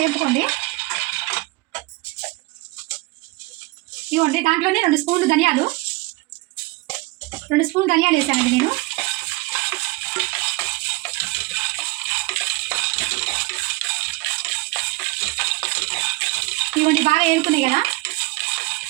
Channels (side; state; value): left; quieter; 23.0 dB